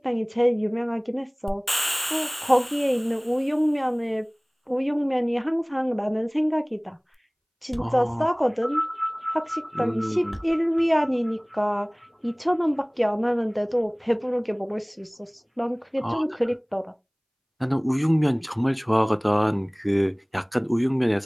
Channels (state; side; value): identical; both; correlation 1.00